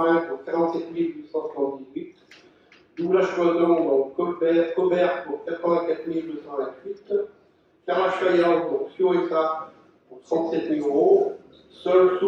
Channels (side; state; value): both; identical; correlation 1.00